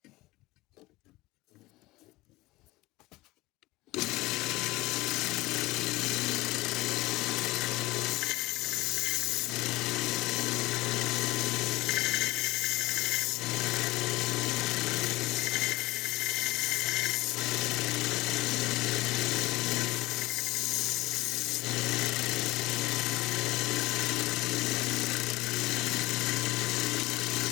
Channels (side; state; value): right; quieter; 20.0 dB